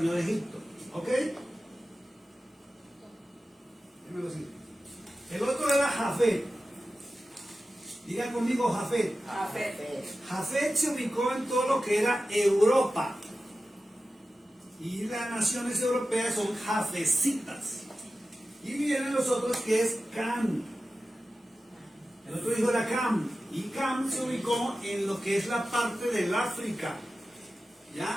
de Egipto. ¿Ok? El otro era Jafet. Diga conmigo Jafet. Jafet se ubicó en todo lo que era Europa. Y las naciones europeas son jafecitas. Y vienen los otros que es Cam. El otro hijo era Cam. Y Cam se ubicó en lo que es la parte del África.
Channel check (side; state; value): both; normal; correlation 0.94